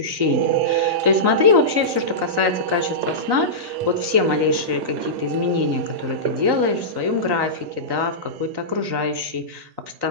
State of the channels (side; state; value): left; late; 3.9 ms